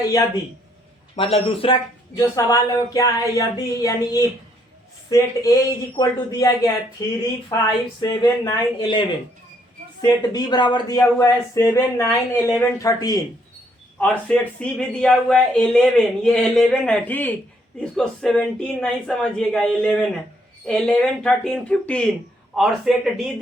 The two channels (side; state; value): both; normal; correlation 0.70